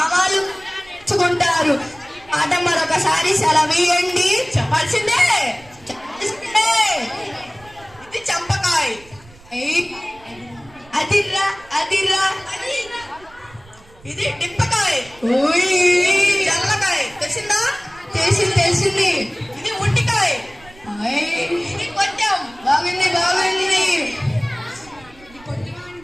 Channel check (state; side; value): noise; right; rumble, 24 dB below the sound